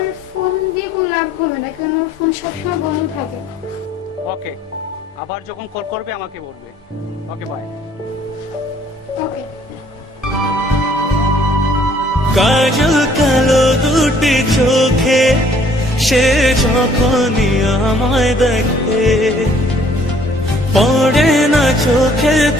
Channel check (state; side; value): normal; both; correlation 0.60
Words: ফোন দিয়ে কোনো লাভ হবে না, কারণ ওর ফোন সবসময় বন্ধ থাকে। ওকে, আবার যখন কল করবে আমাকে বলবে। Okay bye. ওকে। কাজল কালো দুটি চোখে সে যখনই আমায় দেখে, পড়ে না